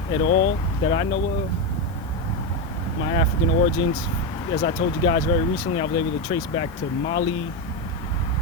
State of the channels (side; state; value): right; noise; hiss, 26 dB below the sound